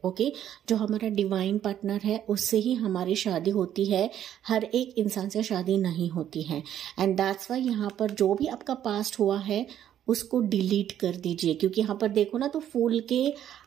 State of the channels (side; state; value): left; quieter; 10.7 dB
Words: ओके, जो हमारा डिवाइन पार्टनर है उससे ही हमारी शादी होती है, हर एक इंसान से शादी नहीं होती है। एंड दैट्स वाई यहाँ पर जो भी आपका पास्ट हुआ है उसको डिलीट कर दीजिए, क्योंकि यहाँ पर देखो ना तो फूल के